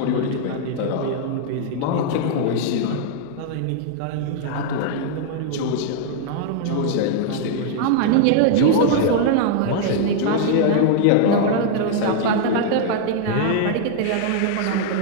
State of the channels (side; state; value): both; different; correlation -0.01